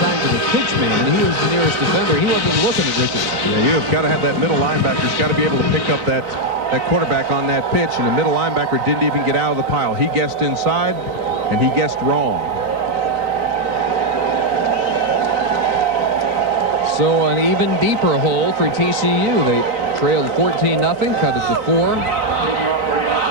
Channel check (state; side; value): late; left; 4.0 ms